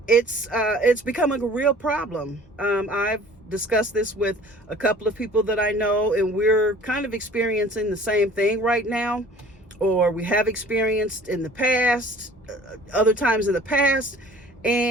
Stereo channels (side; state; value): both; normal; correlation 0.49